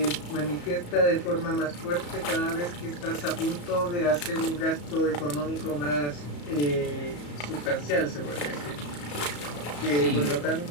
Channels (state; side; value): late; right; 34 ms